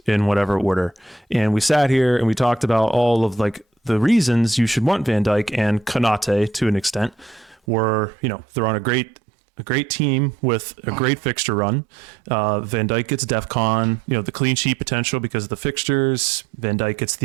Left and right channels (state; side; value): drops out; left; at 7.6 s